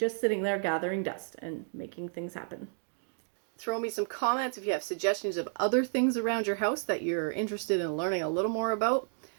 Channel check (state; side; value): silent; left; 57 dB below the other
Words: sitting there gathering dust and making things happen. Throw me some comments if you have suggestions of other things around your house that you're interested in learning a little more about.